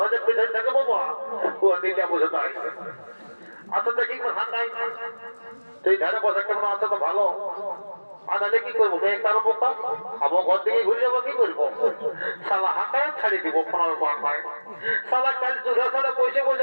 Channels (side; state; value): both; inverted; correlation -1.00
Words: পেছনে থাকে বাবা, ও দিকে বুঝে তাই আচ্ছা দেখি ঠান্ডাই সেই ধারে বসে কেমন আছে তো ভালো। আর তাহলে কি করবো কারো বোকা আমার ঘর থেকে ঘুরে যাবো, কি করবো সালা হাঁটায় ছাড়িয়ে দিব সালা কাল চুষা সালা বসে